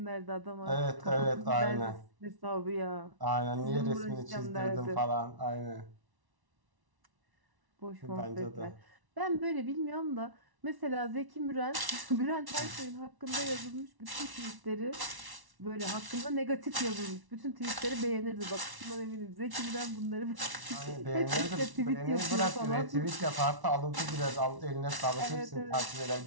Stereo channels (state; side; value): late; left; 1.1 ms